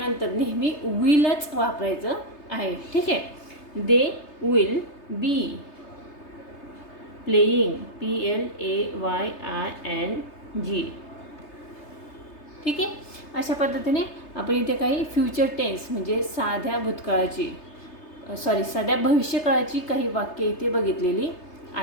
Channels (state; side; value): late; right; 3.3 ms